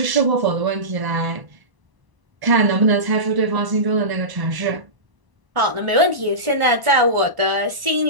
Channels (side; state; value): left; late; 1.0 ms